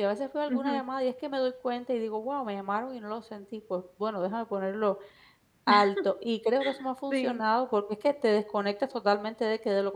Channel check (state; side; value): identical; both; correlation 1.00